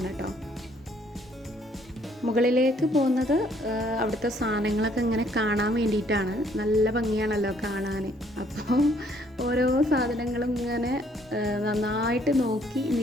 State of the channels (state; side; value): normal; both; correlation 0.64